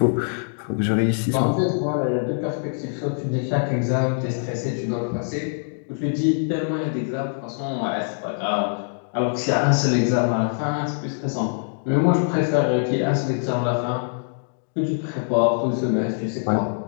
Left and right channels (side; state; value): right; silent; digital silence